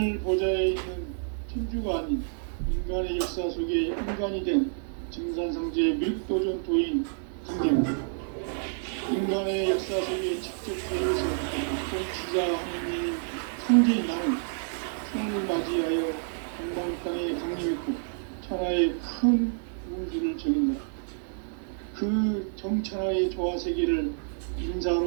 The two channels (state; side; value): silent; left; digital silence